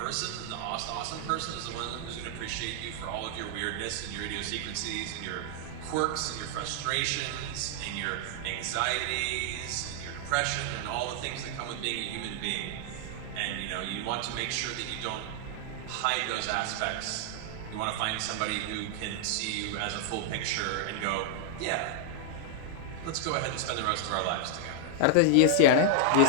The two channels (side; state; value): both; different; correlation 0.00